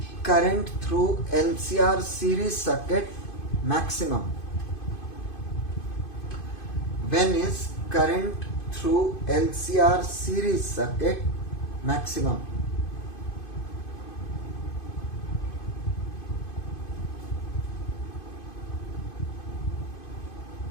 current through LCR series circuit maximum? When is current through LCR series circuit maximum?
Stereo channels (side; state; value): right; late; 2.5 ms